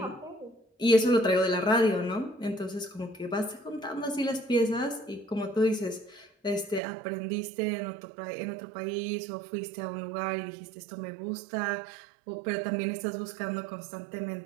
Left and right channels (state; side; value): drops out; left; at 6.8 s